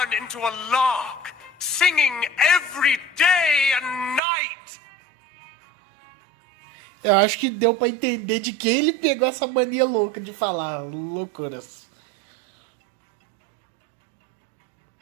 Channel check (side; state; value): left; drops out; at 4.2 s